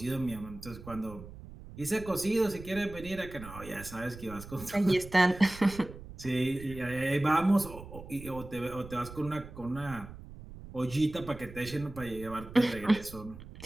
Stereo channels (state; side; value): noise; right; rumble, 14 dB below the sound